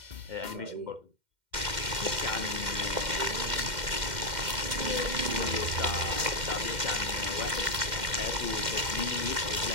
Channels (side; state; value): left; late; 2.1 ms